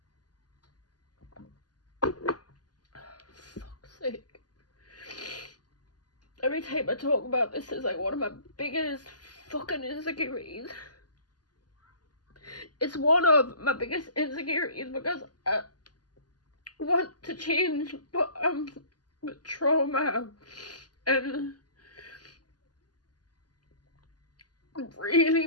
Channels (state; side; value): late; right; 0.70 ms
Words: Fuck's sake. Every time I talk about this, it's like one of my biggest fucking insecurities. It's one of my biggest insecurities because I want to change, but with trauma and really